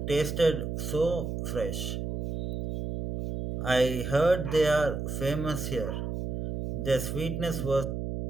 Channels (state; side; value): noise; right; hum, 4 dB below the sound